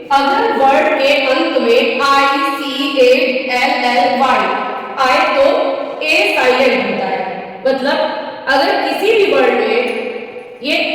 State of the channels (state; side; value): identical; both; correlation 1.00